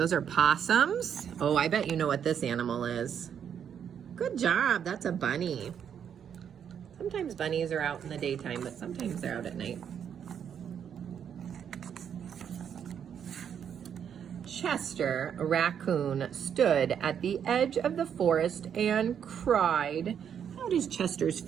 are possums. Oh, I bet you know what this animal is. Good job, that's a bunny. Sometimes bunnies are out in the daytime, but sometimes they're out at night. Chester, a raccoon, stood at the edge of the forest and cried. How does Chester's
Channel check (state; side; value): quieter; left; 8.3 dB